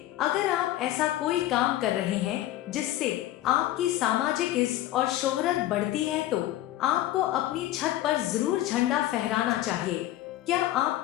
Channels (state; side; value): quieter; right; 14.6 dB